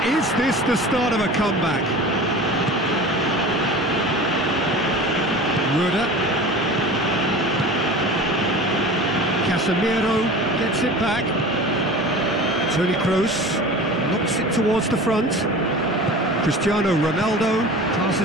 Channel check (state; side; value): normal; both; correlation 0.37